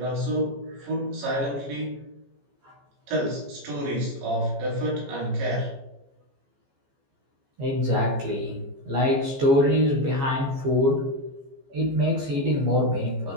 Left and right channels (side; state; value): left; late; 14 ms